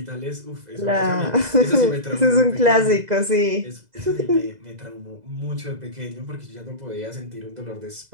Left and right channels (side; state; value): left; late; 2.0 ms